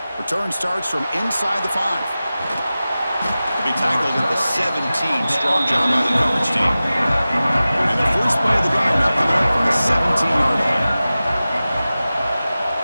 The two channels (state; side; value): inverted; both; correlation -0.96